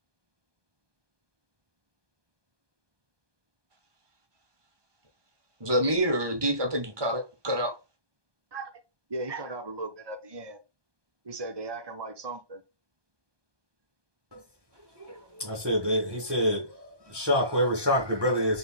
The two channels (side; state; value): left; late; 1.2 ms